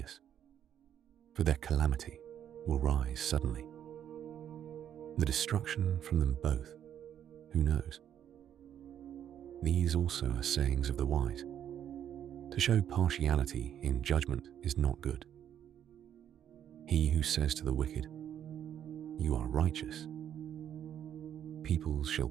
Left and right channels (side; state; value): left; quieter; 9.8 dB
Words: for their calamity will rise suddenly. The destruction from them both, who knows? These also are sayings of the wise. To show partiality in judgment is not good. He who says to the wicked, "You are righteous," peoples shall